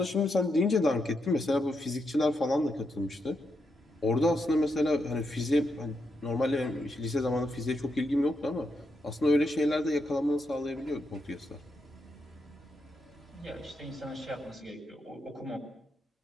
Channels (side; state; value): both; normal; correlation 0.82